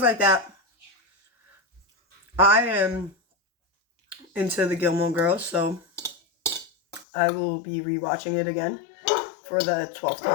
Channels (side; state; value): right; drops out; at 7.1 s